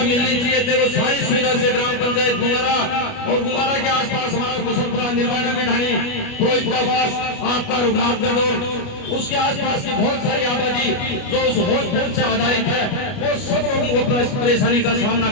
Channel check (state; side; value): late; right; 29 ms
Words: चाहिए थे। वो सारी सुविधा से ग्राम पंचायत गुंगारा और गुंगारा के आसपास हमारा कुशलपुरा, निर्वाणा की ढाणी, पुरोहितराबास, आपका रघुनाथगढ़ और उसके आसपास की बहुत सारी आबादी जो उस हॉस्पिटल से आधारित है, वो सब लोगों को परेशानी का सामना